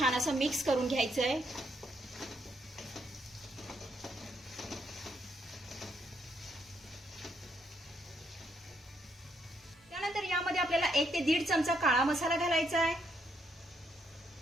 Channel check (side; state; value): both; normal; correlation 0.75